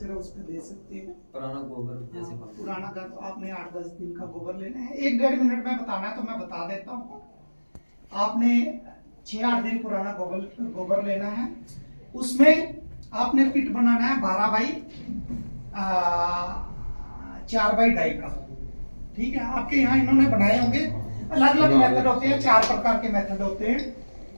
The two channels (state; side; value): inverted; both; correlation -1.00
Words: है, उस पर दे सकते हैं। पुराना गोबर जैसे पुराना घर तो आपने 8-10 दिन का गोबर लेना है, 1-1.5 मिनट में बताना है तो मैं बता देता हूँ। आपने 6-8 दिन पुराना गोबर लेना है, उसमें आपने पिट बनाना है 12 बाई 4x2 का। ठीक है, आपके यहाँ इन्होंने बनाए होंगे, अलग अलग मेथड होते हैं, 4 प्रकार के मेथड होते हैं।